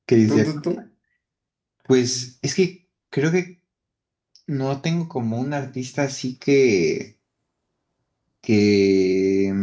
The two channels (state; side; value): identical; both; correlation 1.00